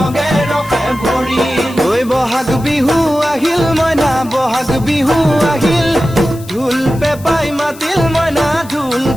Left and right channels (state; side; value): noise; left; hiss, 20 dB below the sound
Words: ৰখে ভৰিল ঐ বহাগ বিহু আহিল মইনা বহাগ বিহু আহিল ঢোল পেপাই মাতিল মইনা ঢোল